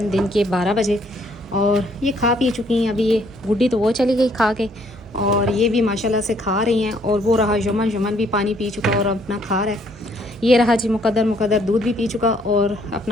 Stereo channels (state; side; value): normal; both; correlation 0.66